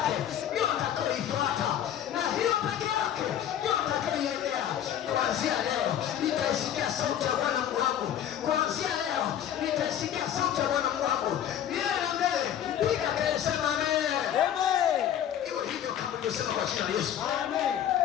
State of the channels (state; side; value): quieter; right; 10.3 dB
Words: ndio nitakayoifuata, na hiyo peke yake ndio nitakayoiendea. Kuanzia leo nitaisikia sauti ya Bwana Mungu wangu. Kuanzia leo nitaisikia sauti ya Bwana Mungu wangu. Milele na milele. Piga kelele, sema amen. Amen. Iwe hivyo kama nilivyosema kwa jina la Yesu. Amen.